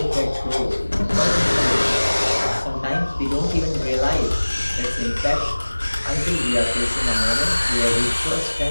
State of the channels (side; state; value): both; inverted; correlation -1.00